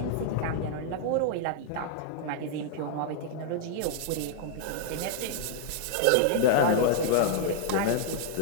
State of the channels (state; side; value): different; both; correlation -0.01